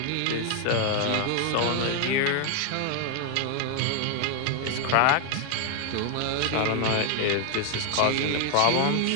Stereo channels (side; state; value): both; different; correlation 0.00